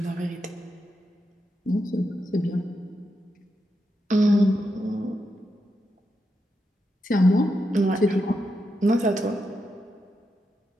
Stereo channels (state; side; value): normal; both; correlation 0.85